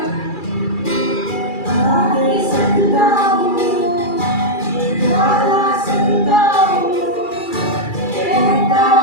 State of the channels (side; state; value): right; late; 2.4 ms